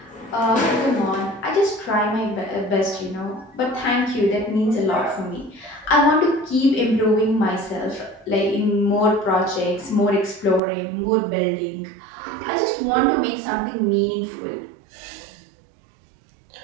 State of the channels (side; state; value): left; drops out; at 10.6 s